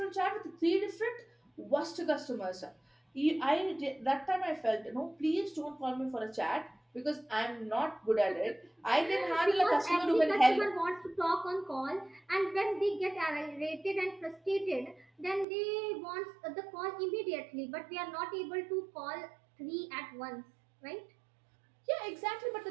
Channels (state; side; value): drops out; left; at 15.5 s